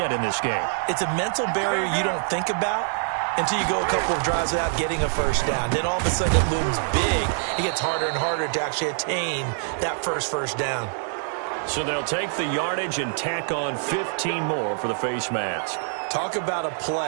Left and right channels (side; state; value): left; silent; 61 dB below the other